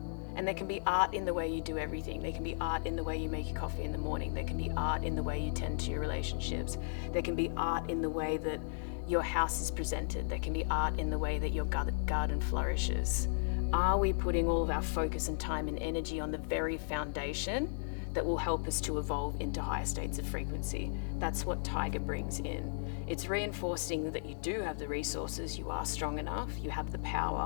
And there can be art in the way you do everything. There can be art in the way you make your coffee in the morning. There can be art in the way you tend to your relationships. There can be art in the way that your house is presented. There can be art in the way that your garden flourishes. Are we putting all of our focus and time and energy on the very foundation that will help us to evolve into higher states of frequency? That's what Tiger brings in. It's reinforcing that you do have the resources, you are strong enough, you have the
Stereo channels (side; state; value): right; silent; digital silence